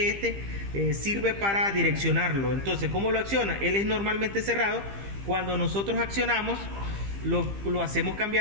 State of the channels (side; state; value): left; late; 15 ms